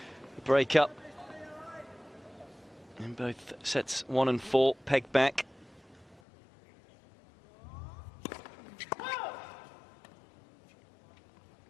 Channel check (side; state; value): right; drops out; at 6.2 s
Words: a break-up in both sets 1 and 4, pegged back.